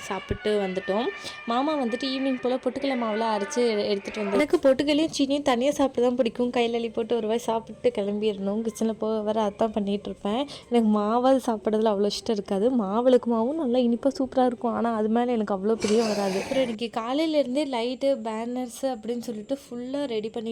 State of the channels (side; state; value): both; identical; correlation 1.00